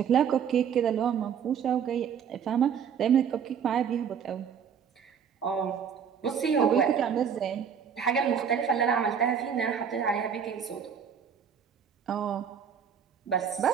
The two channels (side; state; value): left; quieter; 7.5 dB